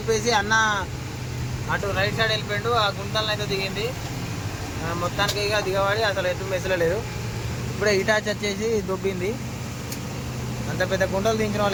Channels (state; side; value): identical; both; correlation 1.00